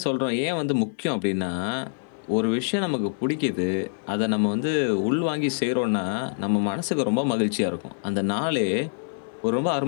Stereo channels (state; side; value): silent; right; 62 dB below the other